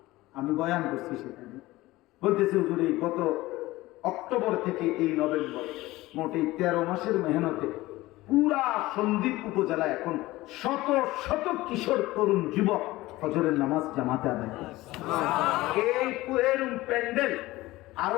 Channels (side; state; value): right; quieter; 18.5 dB